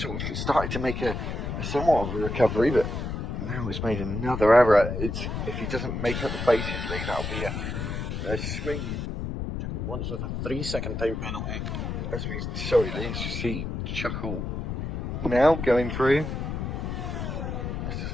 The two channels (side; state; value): left; noise; rumble, 4 dB below the sound